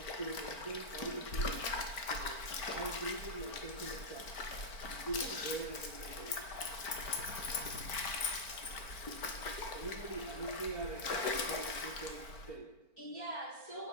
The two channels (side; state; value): right; late; 4.4 ms